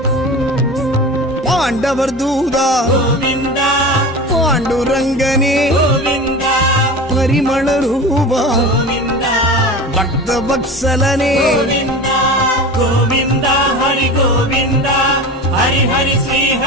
பாண்டவர் தூதா गोविन्दा பாண்டுரங்கனே गोविन्दा பரிமள ரூபா गोविन्दा பக்த வத்சலனே गोविन्दा गोविन्दा हरि गोविन्दा हरि हरि श्री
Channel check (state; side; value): normal; both; correlation 0.32